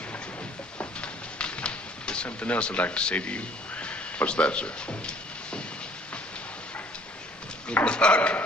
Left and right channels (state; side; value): normal; both; correlation 0.56